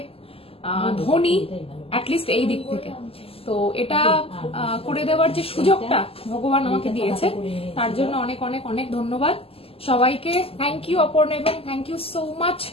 ধনী, অ্যাটলিস্ট এই দিক থেকে। তো এটা করে দেওয়ার যে সুযোগটা ভগবান আমাকে দিয়েছে, তার জন্য অনেক অনেক অনেক ধন্যবাদ সবাইকে। থ্যাংক ইউ অপর্ণা, এবং থ্যাংক ইউ সো মাচ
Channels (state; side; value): late; right; 0.28 ms